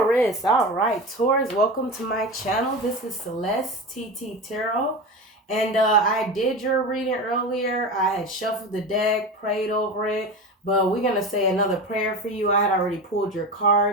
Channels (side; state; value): both; normal; correlation 0.26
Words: All right, Taurus, welcome to my channel. This is Celeste TT Tarot. And I did your reading earlier. I had shuffled the deck, prayed over it. But we're going to say another prayer for you. I had already pulled your